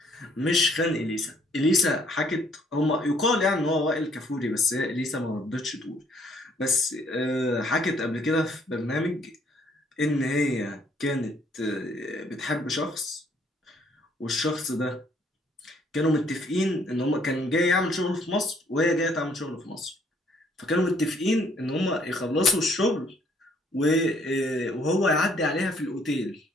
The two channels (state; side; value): normal; both; correlation 0.65